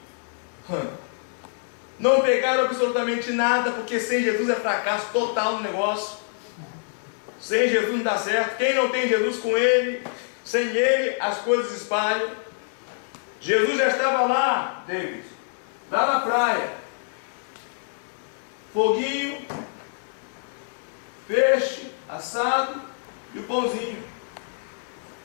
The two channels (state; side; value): silent; right; 61 dB below the other